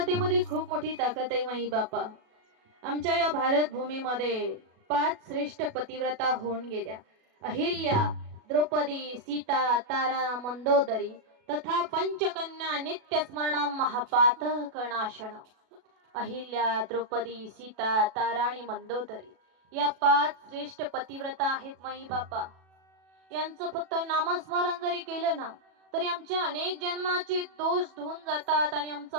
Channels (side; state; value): left; late; 37 ms